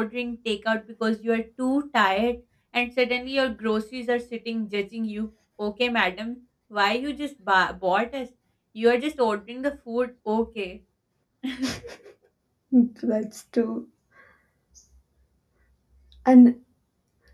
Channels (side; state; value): both; identical; correlation 1.00